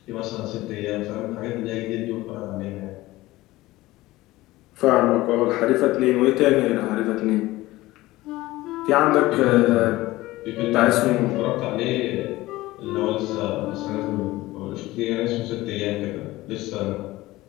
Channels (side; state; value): right; quieter; 18.2 dB